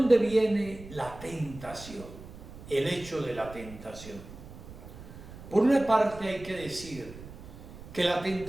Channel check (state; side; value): noise; right; rumble, 15 dB below the sound